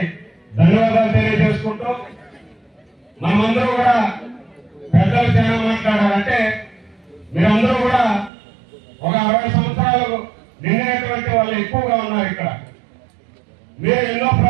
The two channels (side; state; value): left; drops out; at 8.3 s